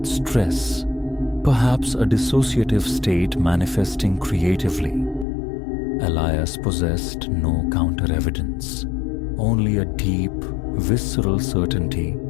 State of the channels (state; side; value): drops out; right; at 5.2 s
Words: stress, perhaps a dissociative state manifesting creatively. Elias possessed no counter-evidence, only a deep, visceral certainty